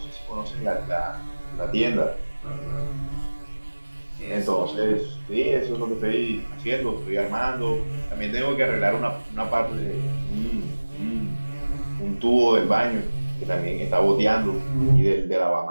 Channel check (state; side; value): inverted; both; correlation -1.00